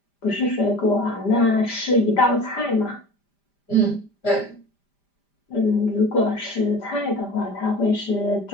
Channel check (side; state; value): right; late; 5.0 ms